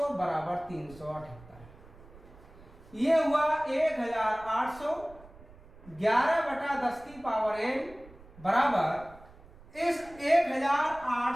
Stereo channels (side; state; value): right; noise; rumble, 22 dB below the sound